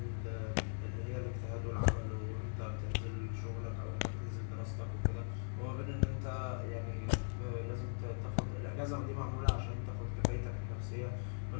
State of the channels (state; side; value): silent; right; digital silence